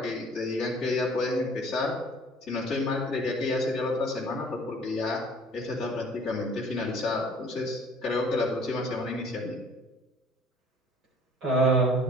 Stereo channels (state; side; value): normal; both; correlation 0.53